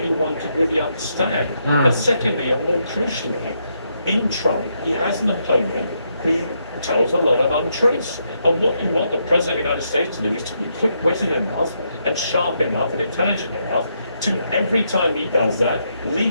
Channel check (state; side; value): inverted; both; correlation -0.78